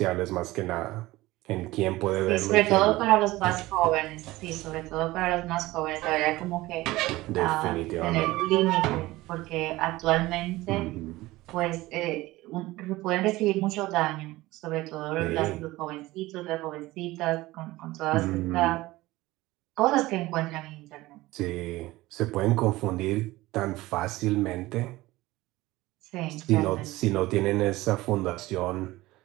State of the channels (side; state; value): left; quieter; 18.7 dB